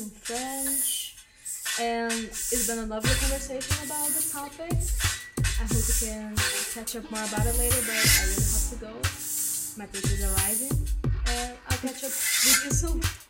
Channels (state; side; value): identical; both; correlation 1.00